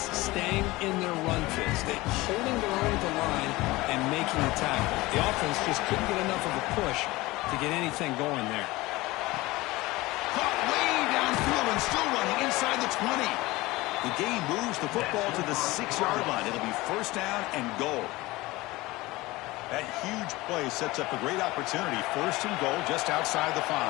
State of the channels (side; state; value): right; quieter; 20.3 dB